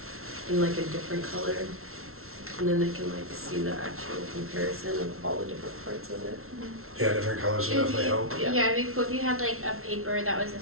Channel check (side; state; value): left; late; 0.62 ms